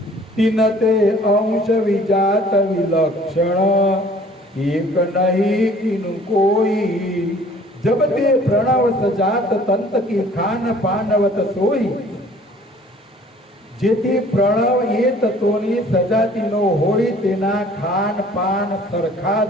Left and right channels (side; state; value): both; normal; correlation 0.53